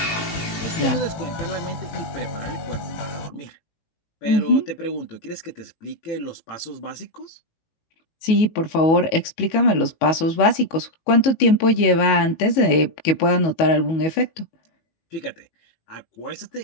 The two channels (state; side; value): late; right; 19 ms